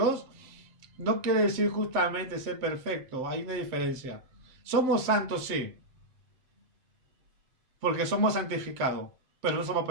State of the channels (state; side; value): late; left; 7.7 ms